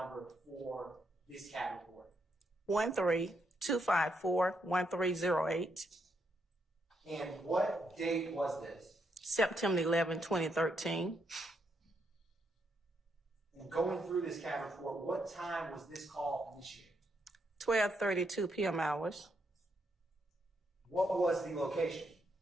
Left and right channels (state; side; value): normal; both; correlation 0.78